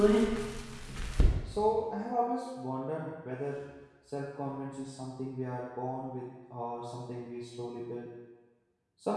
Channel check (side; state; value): both; identical; correlation 1.00